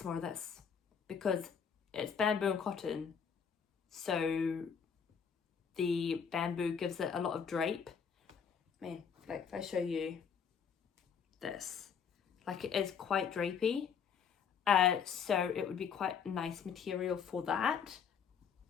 more of this, because it's bamboo and cotton, so the bamboo gives it a lot of drape. I mean, like if I show you this, like it is quite drapey, so it would be quite a nice material for that.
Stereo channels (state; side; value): quieter; right; 6.9 dB